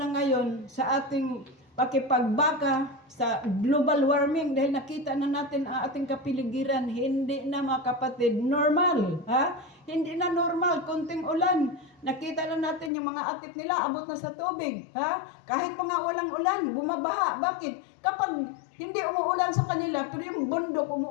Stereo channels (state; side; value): drops out; right; at 12.9 s